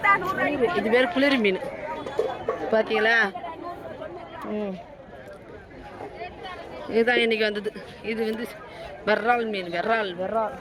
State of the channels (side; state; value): both; identical; correlation 1.00